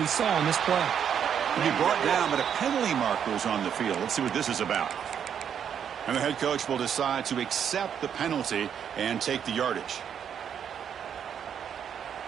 saw in this play. He brought down, but a penalty marker is on the field. Let's see what this is about. And the head coach will decide to accept the penalty and take the yardage.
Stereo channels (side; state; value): left; quieter; 8.3 dB